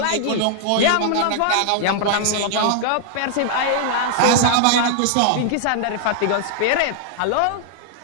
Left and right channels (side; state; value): both; different; correlation -0.01